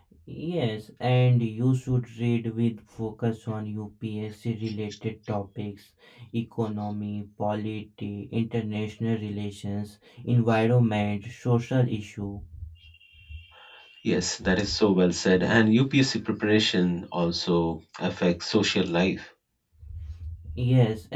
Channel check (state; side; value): identical; both; correlation 1.00